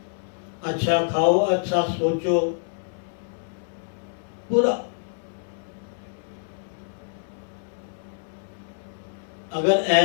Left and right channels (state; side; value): silent; right; 61 dB below the other